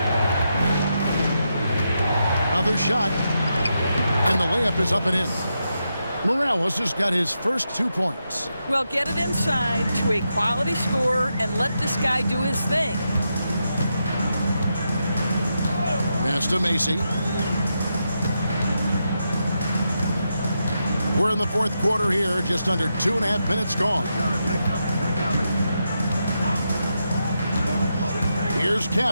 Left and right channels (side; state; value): both; inverted; correlation -0.85